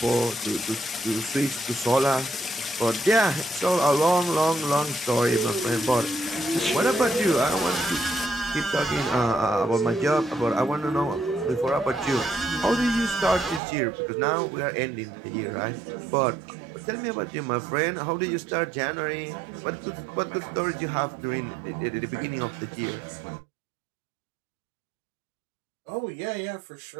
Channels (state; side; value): drops out; left; at 13.6 s